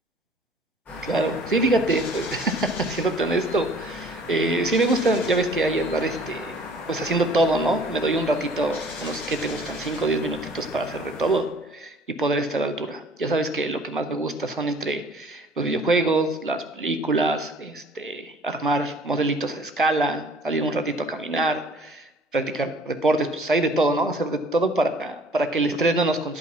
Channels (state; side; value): normal; both; correlation 0.53